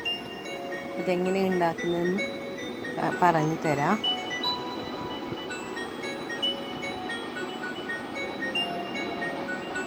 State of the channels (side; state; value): both; identical; correlation 1.00